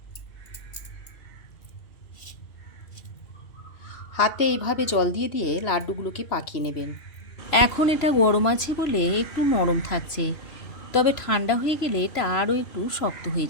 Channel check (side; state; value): right; late; 3.0 ms